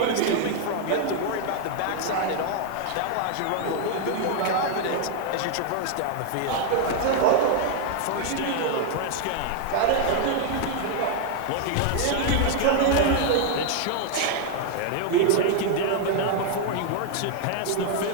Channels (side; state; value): both; different; correlation 0.00